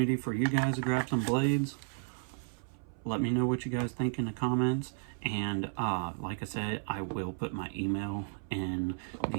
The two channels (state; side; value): silent; left; 56 dB below the other